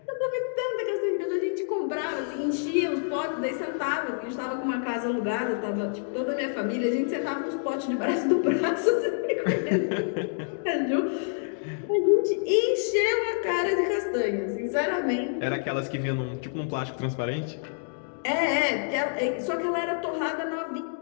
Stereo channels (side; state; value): right; silent; digital silence